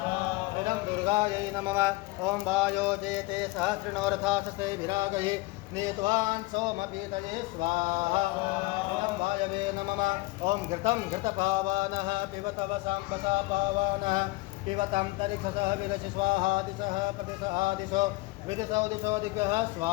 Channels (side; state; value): right; quieter; 22.0 dB